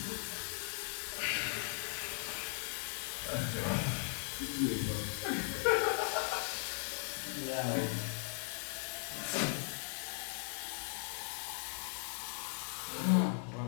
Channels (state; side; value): silent; right; 52 dB below the other